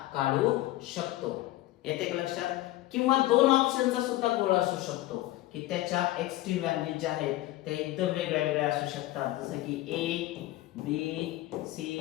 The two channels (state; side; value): quieter; right; 16.6 dB